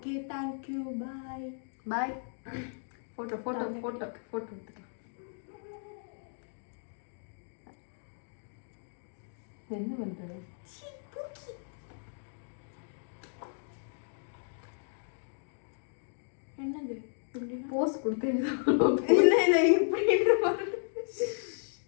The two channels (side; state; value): right; silent; digital silence